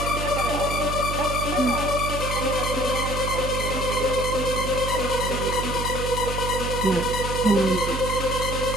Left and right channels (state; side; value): noise; right; hum, 4 dB below the sound